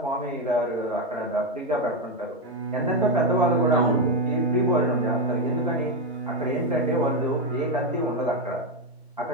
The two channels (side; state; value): both; normal; correlation 0.07